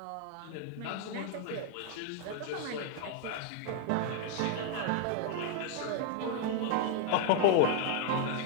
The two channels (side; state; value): both; different; correlation 0.00